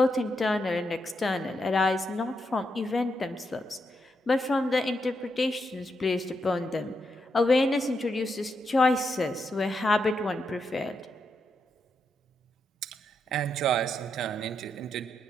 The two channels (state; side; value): normal; both; correlation 0.82